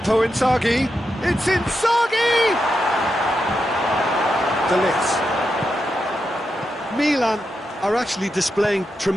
Inzaghi. It's Inzaghi! De Ligt. Milan are actually displaying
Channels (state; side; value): normal; both; correlation 0.86